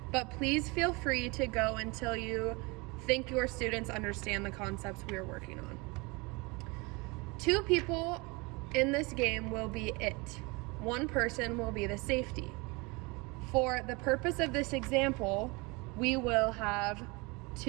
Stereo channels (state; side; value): quieter; left; 26.8 dB